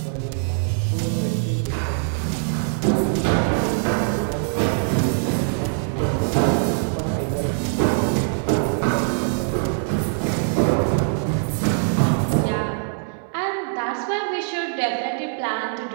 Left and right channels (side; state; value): left; silent; 64 dB below the other